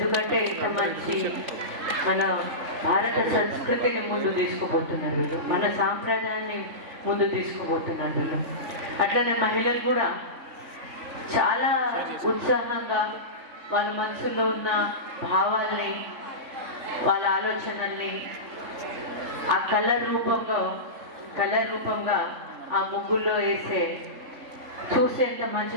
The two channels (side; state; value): left; late; 3.5 ms